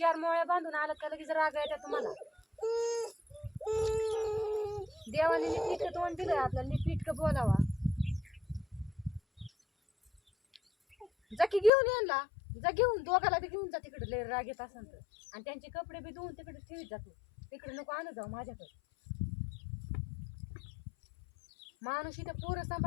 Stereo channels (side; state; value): right; drops out; at 11.7 s